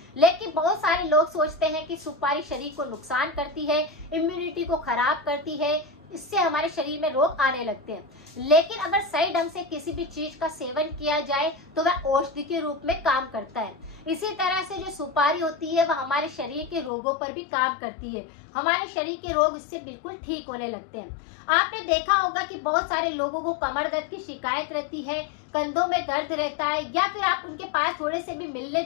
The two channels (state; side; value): drops out; right; at 16.9 s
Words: लेकिन बहुत सारे लोग सोचते हैं कि सुपारी शरीर को नुकसान करती है, इम्यूनिटी को खराब करती है, इससे हमारे शरीर में रोग आने लगते हैं। लेकिन अगर सही ढंग से किसी भी चीज का सेवन किया जाए तो वह औषधि के रूप में काम करता है। इसी तरह से जो सुपारी होती है वह हमारे शरीर के रोगों पर भी काम करती है। हमारे शरीर के रोग इससे बिल्कुल ठीक होने लगते हैं। आपने देखा होगा कि बहुत सारे लोगों को कमर दर्द की शिकायत रहती है, कंधों में दर्द रहता है, या फिर आप उनके पास थोड़े से भी मिलने